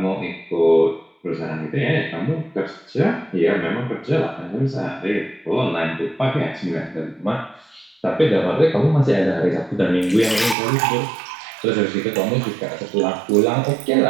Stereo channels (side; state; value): left; drops out; at 10.6 s